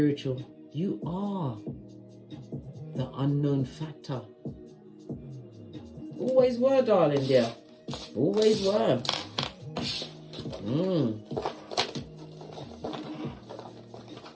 You are the unknown factor. Always were, darling dear. Always were.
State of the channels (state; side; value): identical; both; correlation 1.00